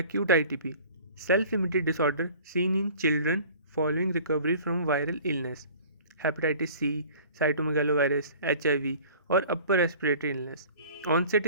ITP, self-limited disorder seen in children following recovery from viral illness, hepatitis C, cytomegalovirus, HIV, or upper respiratory illness. Onset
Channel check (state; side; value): inverted; both; correlation -0.46